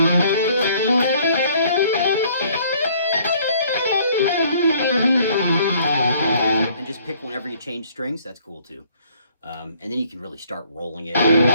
And just pick whenever you change strings. That's cool too. And then you can really start rolling it.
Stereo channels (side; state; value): both; inverted; correlation -0.60